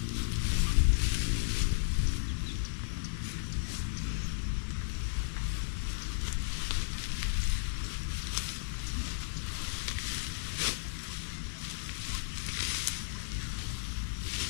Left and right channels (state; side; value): silent; right; 55 dB below the other